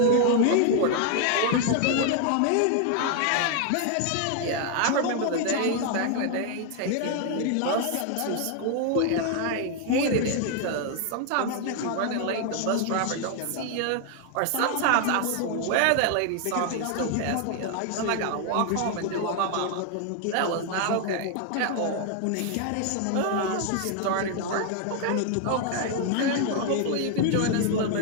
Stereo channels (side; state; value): both; different; correlation 0.00